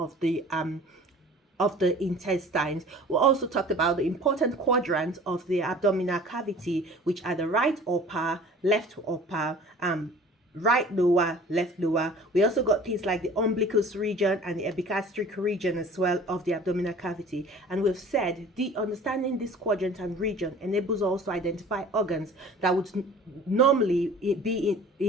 the intestines. We also talked about the important quadrants of the abdominal cavity, which are the right upper, left upper, right lower, left lower. We also got things like the umbilicus region and the epigastric region as well of the abdominal cavity. And we've said the understanding this quadrant and region enables us to identify organs that would normally be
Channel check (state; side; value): normal; both; correlation 0.45